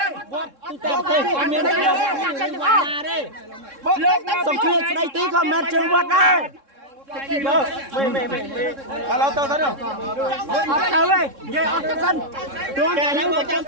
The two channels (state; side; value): late; left; 3.7 ms